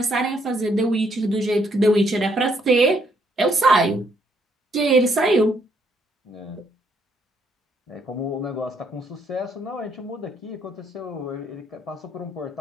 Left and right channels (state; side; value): normal; both; correlation 0.71